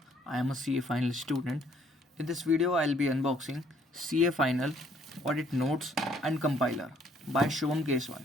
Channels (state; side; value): normal; both; correlation 0.64